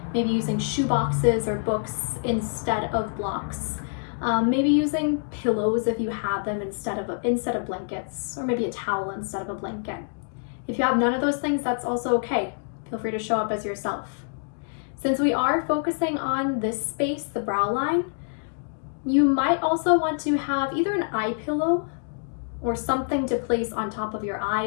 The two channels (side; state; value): right; silent; digital silence